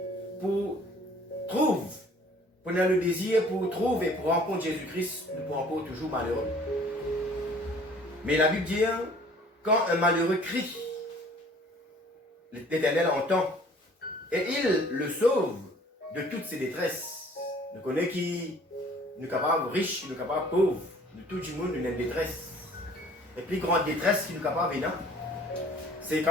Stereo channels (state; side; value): normal; both; correlation 0.53